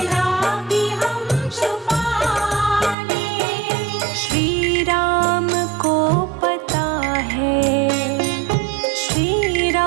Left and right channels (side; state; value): left; drops out; at 3.0 s